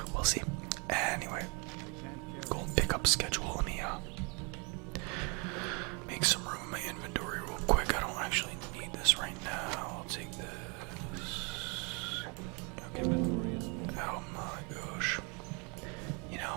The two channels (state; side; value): quieter; left; 32.7 dB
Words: we'll see. Anyway, gold pickup schedule. Let me make some room in my inventory real quick. I don't actually need this right now. I'll take this. Okay. Oh my gosh. You